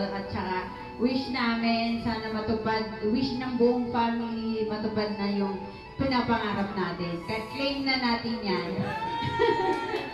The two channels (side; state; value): both; identical; correlation 1.00